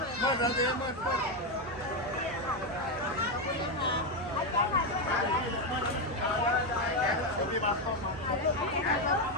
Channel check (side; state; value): right; noise; hum, 18 dB below the sound